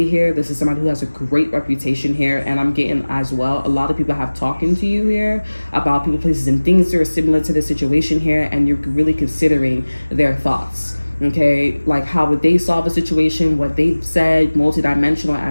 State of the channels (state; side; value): inverted; both; correlation -1.00